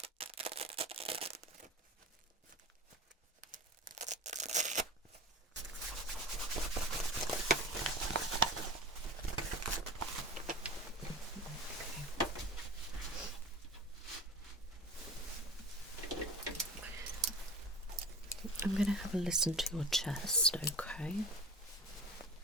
I'm going to have a listen to your chest, okay?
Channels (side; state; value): both; normal; correlation 0.34